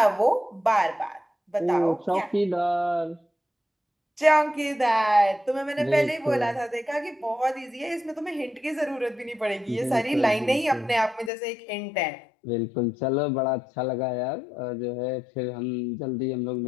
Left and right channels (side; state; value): right; drops out; at 11.3 s